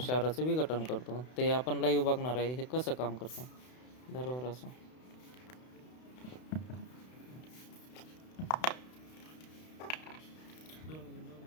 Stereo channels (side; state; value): right; late; 32 ms